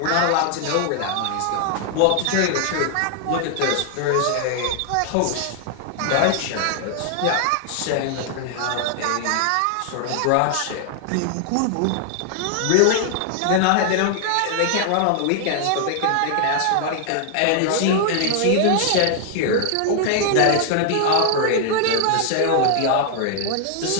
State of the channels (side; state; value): both; different; correlation 0.00